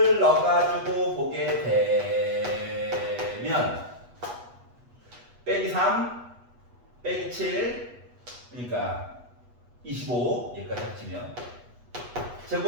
넣어가지고 보게 되면 빼기 3 빼기 7 그러니까 25 여기까지 합치면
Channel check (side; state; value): left; late; 8.2 ms